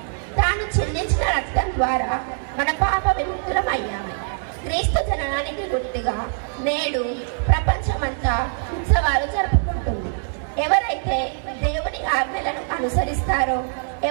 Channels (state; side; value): silent; left; digital silence